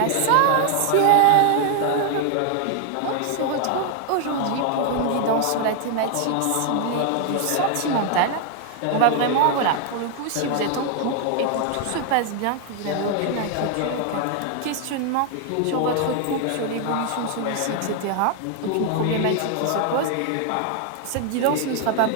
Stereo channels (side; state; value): both; different; correlation 0.00